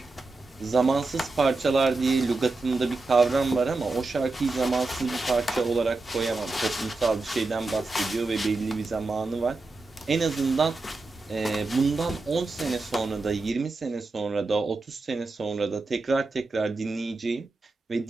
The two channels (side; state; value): left; quieter; 3.4 dB